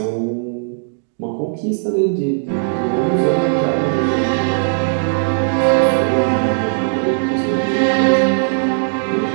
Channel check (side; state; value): left; silent; digital silence